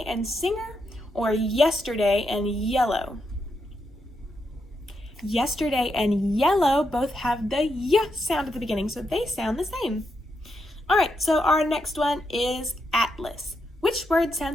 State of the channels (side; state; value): both; normal; correlation 0.82